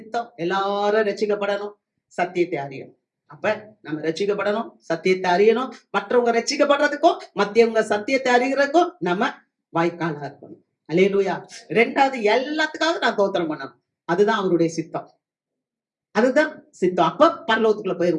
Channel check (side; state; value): both; identical; correlation 1.00